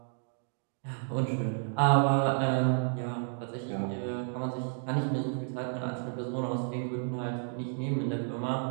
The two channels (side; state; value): left; silent; 57 dB below the other